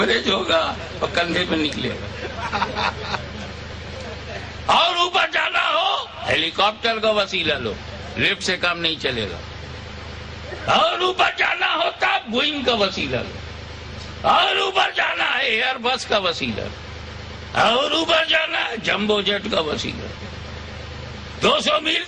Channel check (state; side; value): identical; both; correlation 1.00